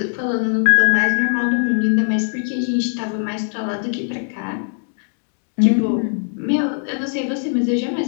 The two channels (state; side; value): silent; right; digital silence